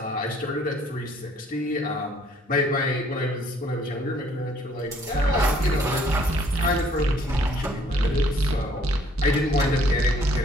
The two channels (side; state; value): both; normal; correlation 0.62